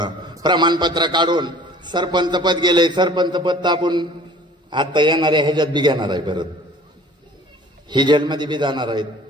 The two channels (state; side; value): normal; both; correlation 0.49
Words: प्रमाणपत्र काढून सरपंच पद गेले, सरपंच पद तापून आता येणाऱ्या ह्याच्यात बी घेणार आहे, परत ही जेलमध्ये बी जाणार आहेत.